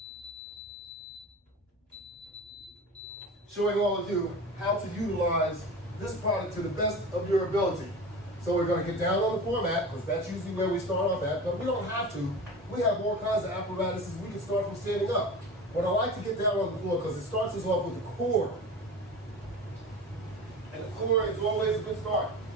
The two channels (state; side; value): normal; both; correlation 0.32